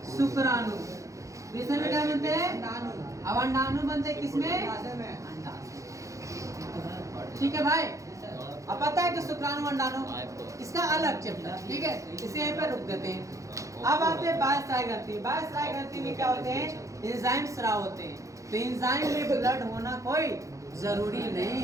शुक्राणु। वृषण में क्या बनते हैं? अब अंडाणु बनते हैं किसमें? अंडाशय। ठीक है भाई? अब पता है कि शुक्राणु अंडाणु, इसका अलग चैप्टर, ठीक है? इसे यहीं पे रुक देते हैं। अब आते हैं बाह्यस्रावी ग्रंथि। बाह्यस्रावी ग्रंथि में क्या होते हैं? एंजाइम स्राव होते हैं। तो एंजाइम में ब्लड होना कोई जरूरी नहीं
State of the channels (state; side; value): late; left; 0.15 ms